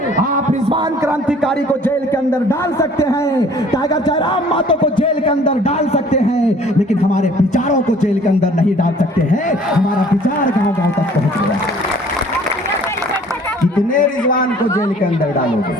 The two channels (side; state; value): both; normal; correlation 0.53